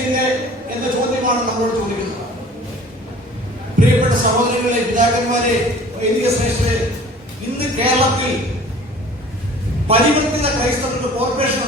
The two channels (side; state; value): both; normal; correlation 0.47